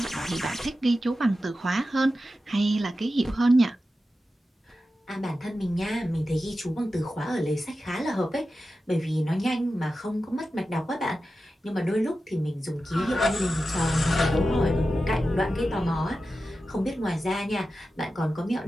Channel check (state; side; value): normal; both; correlation 0.92